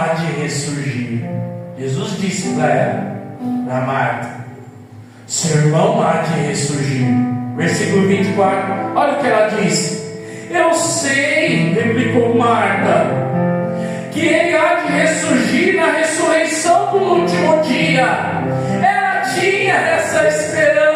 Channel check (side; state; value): both; identical; correlation 1.00